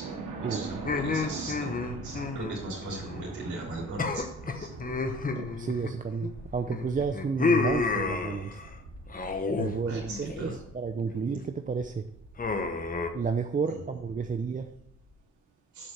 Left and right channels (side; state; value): both; normal; correlation 0.49